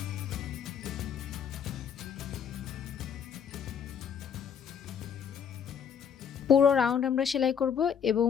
পুরো রাউন্ড আমরা সেলাই করব এবং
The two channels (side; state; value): right; quieter; 7.7 dB